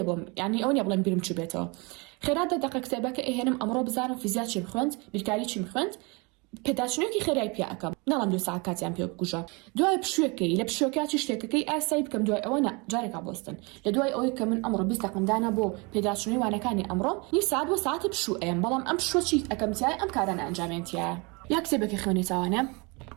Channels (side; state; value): left; quieter; 28.9 dB